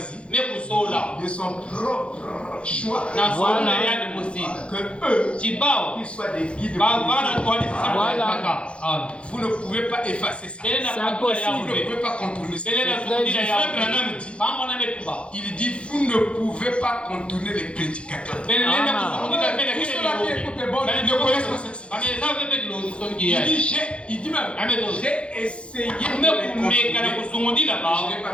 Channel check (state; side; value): late; right; 0.059 ms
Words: de son propre choix, que eux, qu'ils soient des guides. Vous ne pouvez pas effacer ça. C'est impossible. Vous ne pouvez pas contourner ça. Il dit, vous ne pouvez pas contourner les prédicateurs. Tous ceux-là qui écoutent les bonnes ne connaissent pas cette situation. Il dit même, j'ai essayé de les contourner.